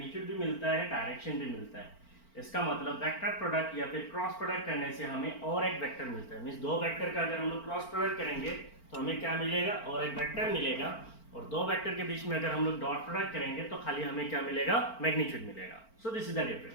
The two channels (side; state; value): right; late; 4.4 ms